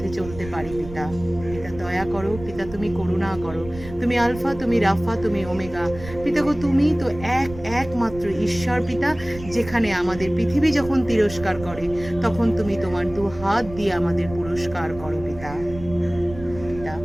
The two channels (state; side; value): noise; right; rumble, 14 dB below the sound